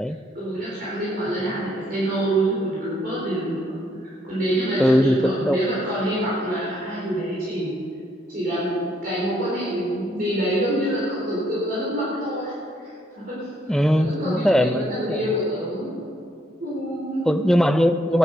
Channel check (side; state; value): both; normal; correlation 0.71